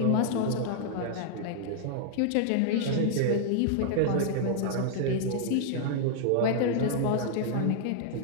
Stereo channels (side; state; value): both; different; correlation -0.01